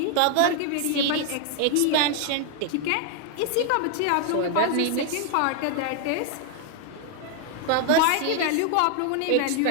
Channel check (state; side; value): different; both; correlation 0.00